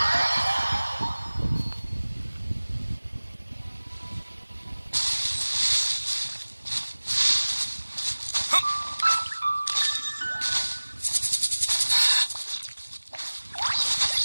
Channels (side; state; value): both; inverted; correlation -1.00